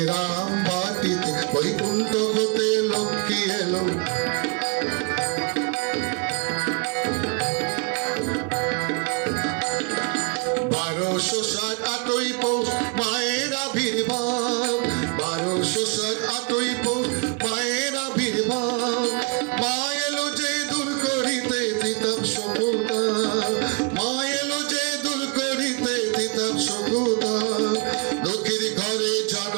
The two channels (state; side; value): quieter; left; 33.6 dB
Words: রাম বাটিতে, বৈকুণ্ঠ হতে লক্ষ্মী এলো। 1260 পৌষ মায়ের আবির্ভাব, 1260 পৌষ মায়ের আবির্ভাব। মা এলো যে দূর করিতে তিতাব শোকতা, মা এলো যে দূর করিতে তিতাব শোকতা। দুঃখীর ঘরে